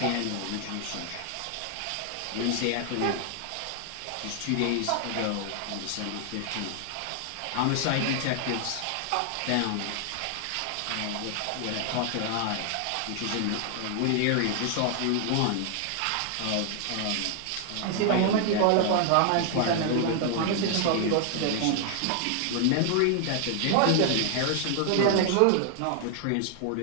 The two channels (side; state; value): both; different; correlation 0.00